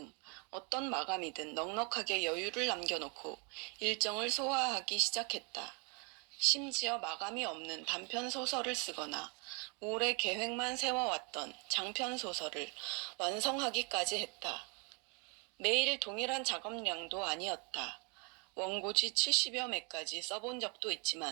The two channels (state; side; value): quieter; left; 33.3 dB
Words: 어떤 마감이든 넉넉하게 여유를 남겨놓고 일정을 소화하기 시작했다. 심지어 마감이 없는 단편 소설을 쓰거나 오래 계획만 세워왔던 장편 소설을 완성하기까지 했다. 매일 동일한 작업량도 아니었다. 원고지 70여 매까지 써본 적도